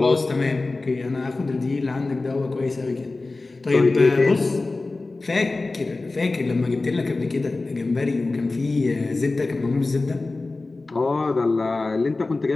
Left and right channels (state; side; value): quieter; right; 3.4 dB